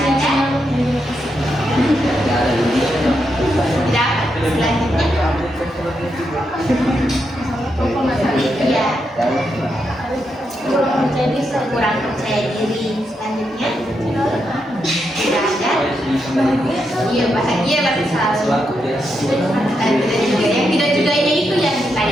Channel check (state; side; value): normal; both; correlation 0.83